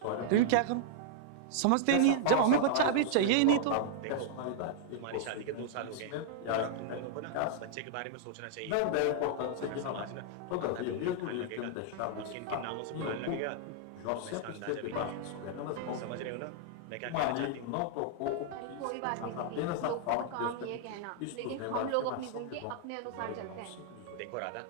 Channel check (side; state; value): both; different; correlation -0.01